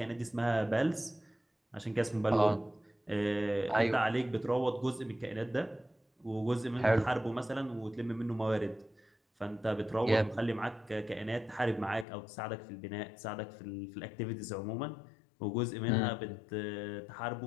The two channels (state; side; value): drops out; right; at 12.1 s